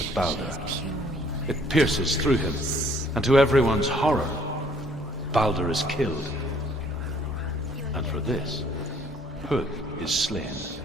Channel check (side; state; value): both; normal; correlation 0.60